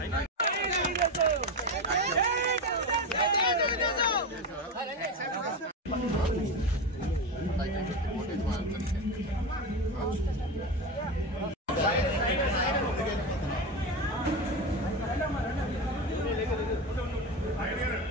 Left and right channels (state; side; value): normal; both; correlation 0.19